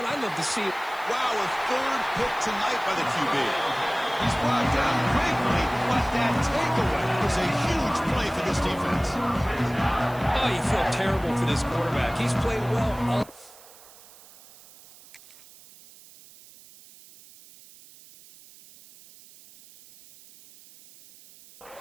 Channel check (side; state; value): right; noise; hiss, 22 dB below the sound